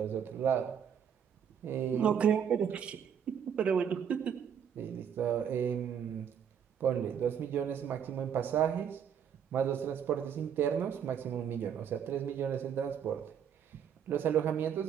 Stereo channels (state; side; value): quieter; left; 8.2 dB